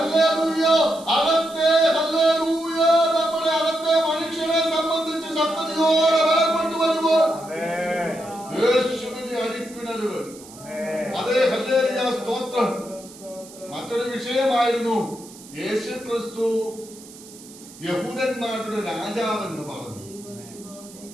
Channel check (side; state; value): right; noise; hiss, 19 dB below the sound